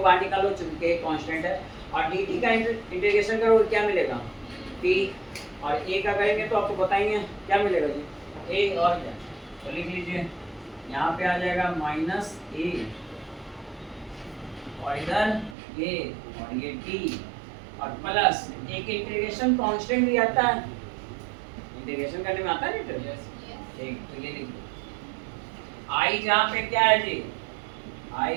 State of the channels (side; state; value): left; drops out; at 15.6 s